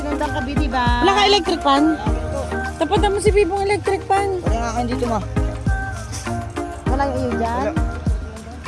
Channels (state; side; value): identical; both; correlation 1.00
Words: ka, B, di ba? Wala ka electric fan? Tapatan mo si Bibong electric fan. Wala nga kayo dito, ma. Wala yung iyo dyan? Wala.